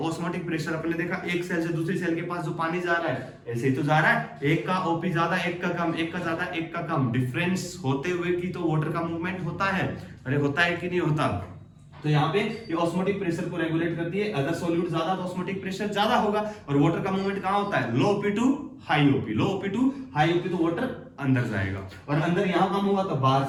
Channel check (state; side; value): identical; both; correlation 1.00